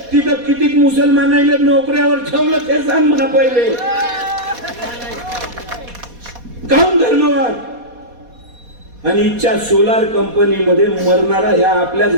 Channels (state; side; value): late; left; 4.2 ms